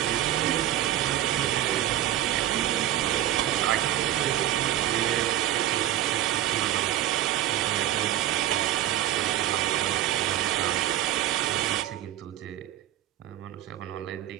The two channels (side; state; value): left; quieter; 12.5 dB